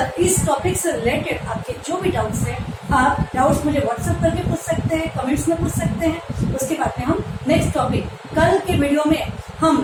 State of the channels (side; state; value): both; identical; correlation 1.00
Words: इस टॉपिक से रिलेटेड आपके जो भी डाउट्स हैं, आप डाउट्स मुझे व्हाट्सएप करके पूछ सकते हैं, कमेंट्स में पूछ सकते हैं। उसके बाद में हम नेक्स्ट टॉपिक कल के वीडियो में हम